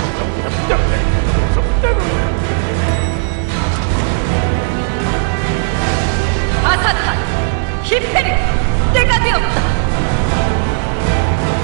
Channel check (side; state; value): left; silent; digital silence